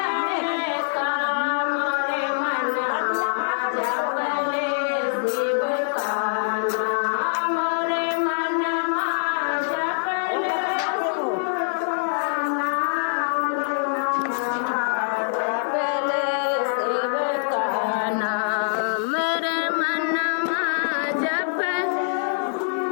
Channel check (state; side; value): silent; right; digital silence